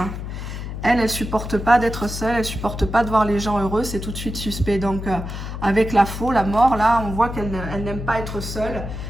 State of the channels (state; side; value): noise; left; hum, 7 dB below the sound